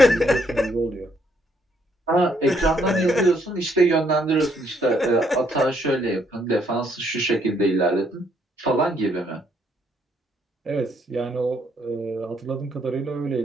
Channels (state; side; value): normal; both; correlation 0.71